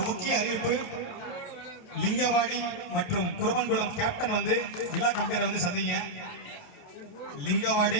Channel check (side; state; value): right; late; 28 ms